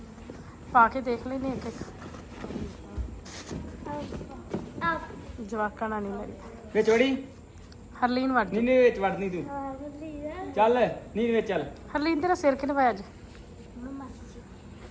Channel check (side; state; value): both; identical; correlation 1.00